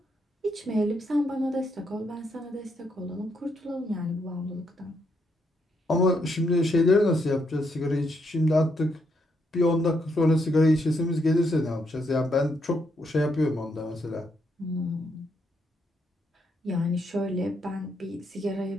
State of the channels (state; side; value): normal; both; correlation 0.77